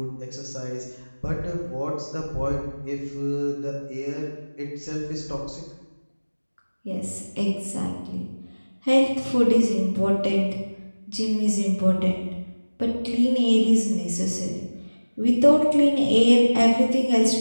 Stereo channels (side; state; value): both; inverted; correlation -1.00